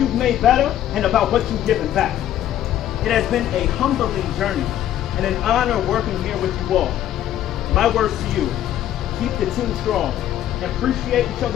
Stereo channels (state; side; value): quieter; right; 11.8 dB